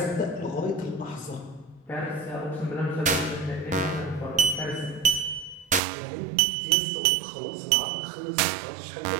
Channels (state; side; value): drops out; left; at 5.8 s